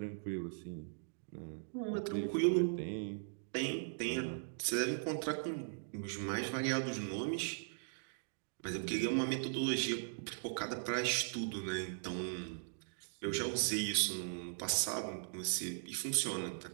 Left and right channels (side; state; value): left; silent; digital silence